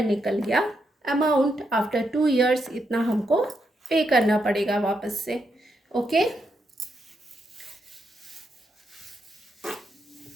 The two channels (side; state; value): both; normal; correlation 0.81